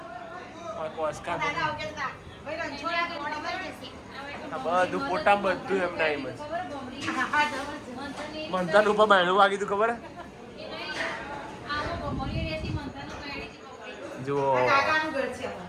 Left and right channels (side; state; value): both; identical; correlation 1.00